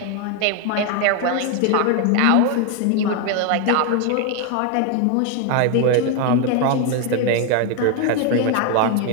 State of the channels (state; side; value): different; both; correlation 0.01